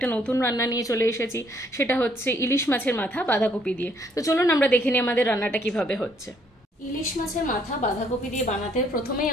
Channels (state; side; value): normal; both; correlation 0.67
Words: নতুন রান্না নিয়ে চলে এসেছি, সেটা হচ্ছে ইলিশ মাছের মাথা বাঁধাকপি দিয়ে। তো চলুন আমরা দেখে নিই আমাদের রান্নাটা কিভাবে হচ্ছে। ইলিশ মাছের মাথা বাঁধাকপি দিয়ে বানাতে প্রথমেই